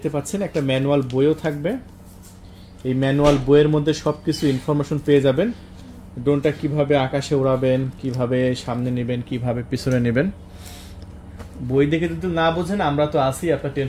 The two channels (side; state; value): both; identical; correlation 1.00